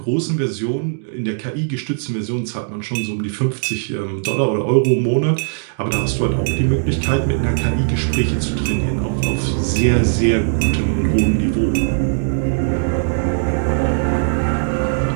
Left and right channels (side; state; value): left; silent; digital silence